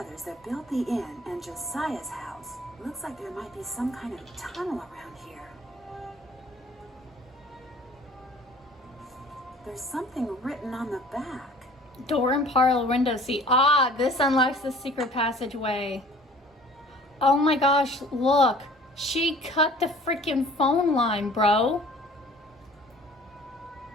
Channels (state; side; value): normal; both; correlation 0.49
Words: that built the inn and Josiah's house. Looks like there might be some kind of tunnel around here. There's something written on the back. Door and parlor window seat. Ah, this unlocks the secret passageway. Oh my gosh, look. She cut the freaking phone line, bro.